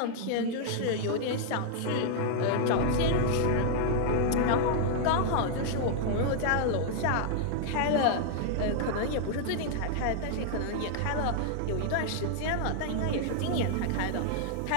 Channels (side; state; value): both; different; correlation -0.01